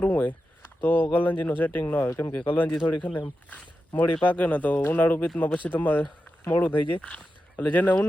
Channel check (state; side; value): normal; both; correlation 0.90